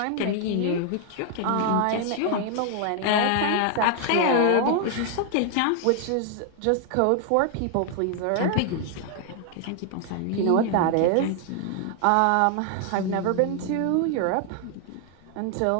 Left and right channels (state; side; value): different; both; correlation 0.00